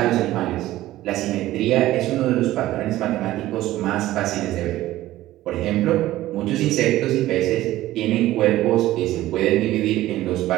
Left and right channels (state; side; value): quieter; left; 15.5 dB